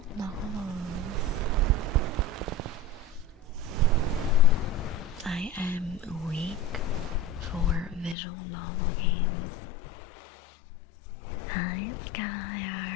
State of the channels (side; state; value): right; drops out; at 8.2 s